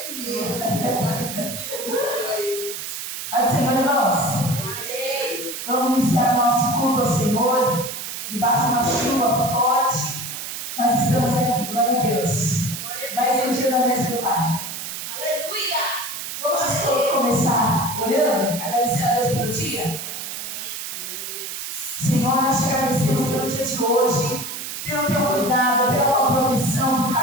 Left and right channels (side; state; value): right; noise; hiss, 7 dB below the sound